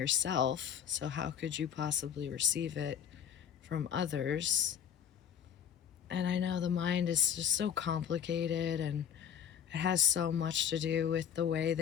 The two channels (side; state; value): right; quieter; 8.6 dB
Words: So, how could you possibly receive it from others? And I know the mind is just so complicated, and it has so much to do with the way